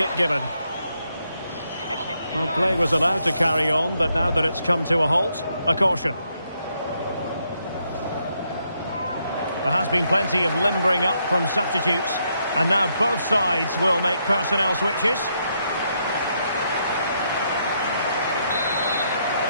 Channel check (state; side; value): inverted; both; correlation -0.77